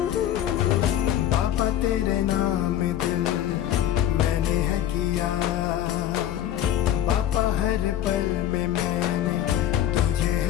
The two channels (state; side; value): quieter; right; 11.5 dB